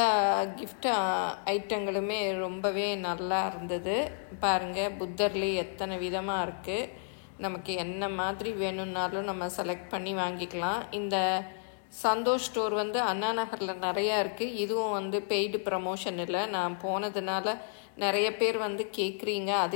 கிஃப்ட் ஐட்டங்களுமே ரொம்பவே நல்லா இருந்தது. பாருங்கள், புத்தர்லேயே எத்தனை விதமாக இருக்குது. நமக்கு என்ன மாதிரி வேணும்னாலும் நம்ம செலக்ட் பண்ணி வாங்கிக்கலாம். இந்த சந்தோஷ் ஸ்டோர் வந்து அண்ணா நகரில் நிறையா இருக்குது. இதுவும் வந்து பெய்டு ப்ரமோஷன் இல்லை, நான் போனதுனால நிறைய பேர் வந்து கேட்குறீங்க,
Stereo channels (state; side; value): silent; right; digital silence